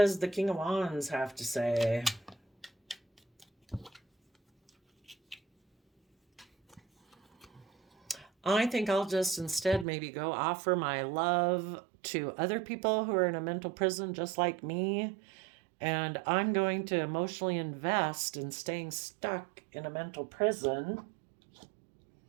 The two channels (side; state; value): left; drops out; at 9.9 s